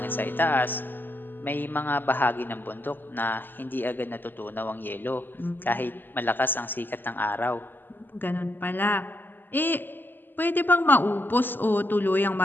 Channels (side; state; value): right; late; 0.092 ms